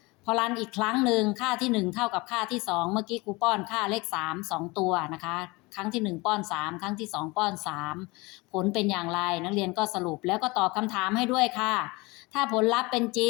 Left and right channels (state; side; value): quieter; right; 24.3 dB